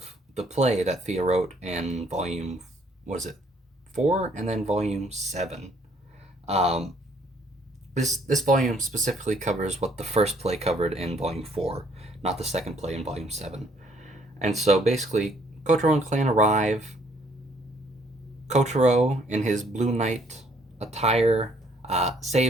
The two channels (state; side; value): normal; both; correlation 0.64